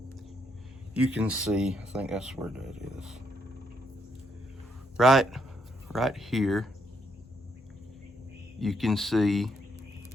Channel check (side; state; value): both; normal; correlation 0.75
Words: You can see, I think that's where that is. Right here, you can see